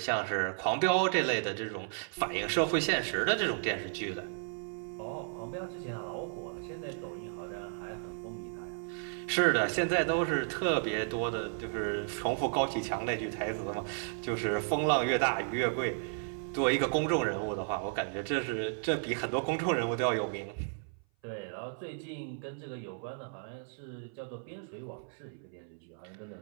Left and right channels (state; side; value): silent; left; 55 dB below the other